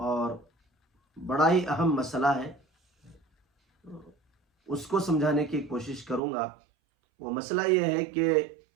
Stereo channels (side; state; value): left; drops out; at 6.2 s